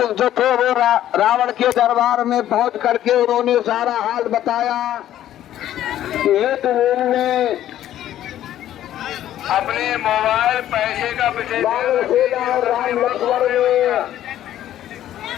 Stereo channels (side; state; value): right; quieter; 12.2 dB